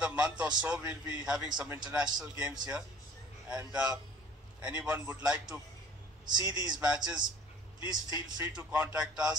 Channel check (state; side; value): normal; both; correlation 0.50